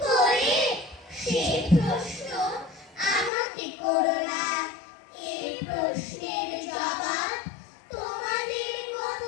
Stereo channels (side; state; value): right; drops out; at 3.3 s